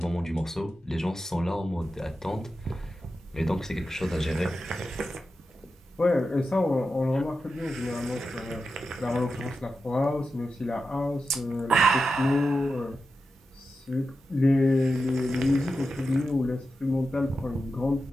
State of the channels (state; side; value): normal; both; correlation 0.90